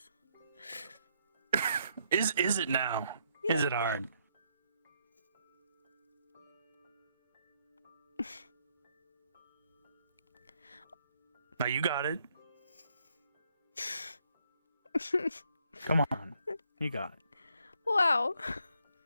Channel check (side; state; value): both; inverted; correlation -0.73